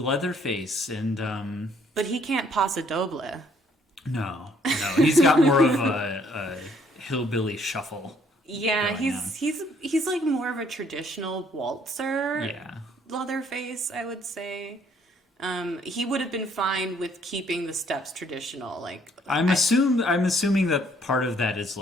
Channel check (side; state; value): both; normal; correlation 0.65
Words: and... But he can't paso doble. No, he's got more of a hillbilly shuffle. Yeah, he's like more of a traditional waltzer. Yeah. Leatherface, I would say. He would have been fine with keeping the steps traditional. Like I'm assuming that part of that is